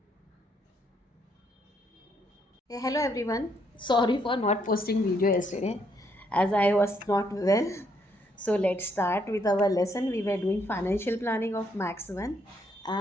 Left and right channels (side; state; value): both; normal; correlation 0.72